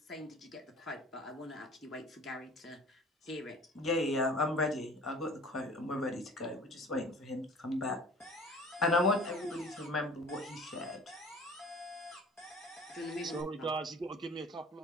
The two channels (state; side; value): normal; both; correlation 0.46